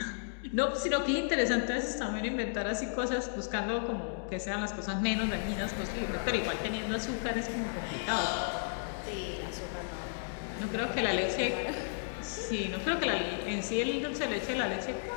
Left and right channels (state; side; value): silent; right; digital silence